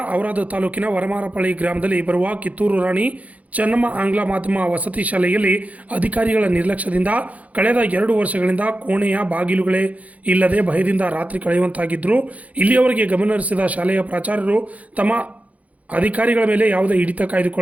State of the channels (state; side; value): late; left; 0.069 ms